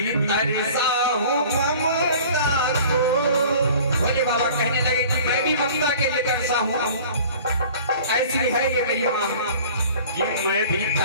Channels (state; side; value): inverted; both; correlation -0.46